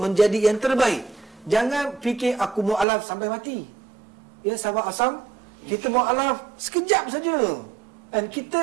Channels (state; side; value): drops out; left; at 2.9 s